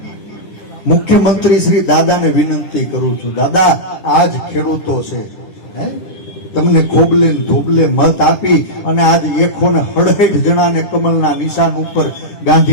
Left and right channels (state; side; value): late; right; 10 ms